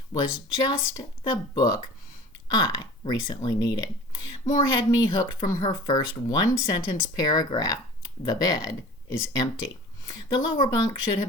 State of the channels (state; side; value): normal; both; correlation 0.42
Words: was just the book I recently needed. Moore had me hooked from her first one-sentence paragraph, "The bed is empty." The lower bunk should